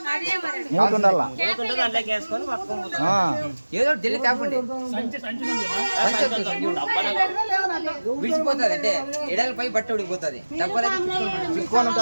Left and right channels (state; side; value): inverted; both; correlation -1.00